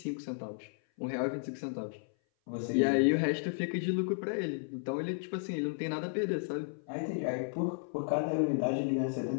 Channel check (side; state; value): right; silent; 55 dB below the other